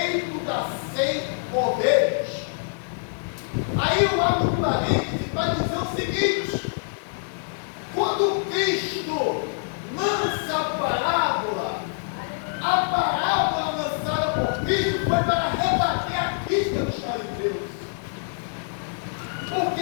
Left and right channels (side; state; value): right; silent; digital silence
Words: das 100 ovelhas. Aí eu abro um parênteses para dizer o seguinte: quando Cristo lança a parábola lançada por Cristo foi para